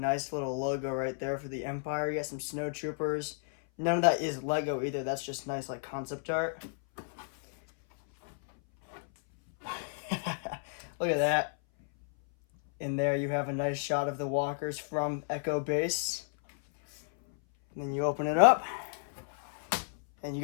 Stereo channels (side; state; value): right; silent; 56 dB below the other